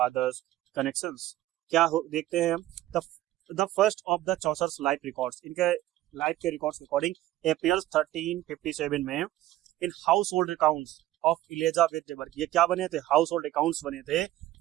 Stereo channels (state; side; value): quieter; left; 15.1 dB